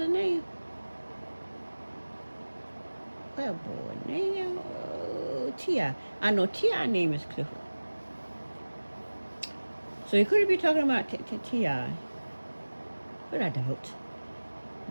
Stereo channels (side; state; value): both; inverted; correlation -1.00